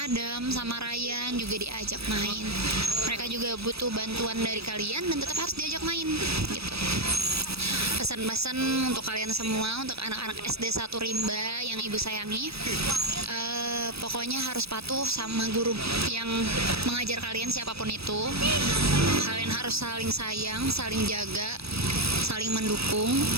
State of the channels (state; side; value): late; left; 0.78 ms